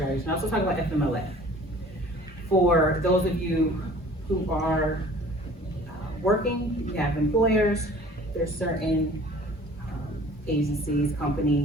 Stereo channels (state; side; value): normal; both; correlation 0.49